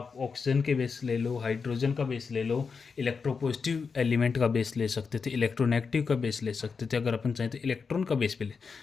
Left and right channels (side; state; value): right; quieter; 5.3 dB